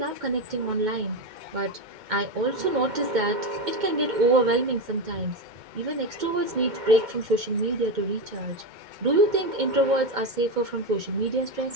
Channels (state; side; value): late; left; 2.1 ms